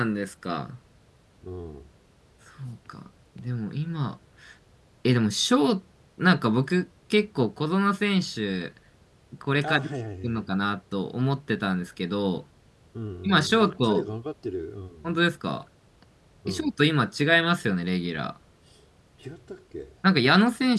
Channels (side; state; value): both; identical; correlation 1.00